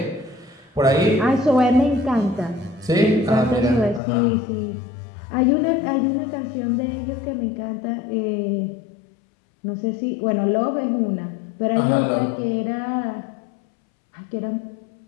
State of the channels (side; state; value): right; drops out; at 4.0 s